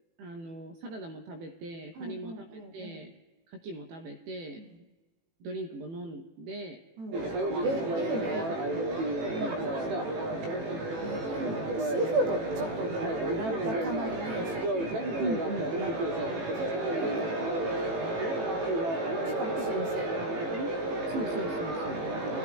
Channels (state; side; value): late; left; 18 ms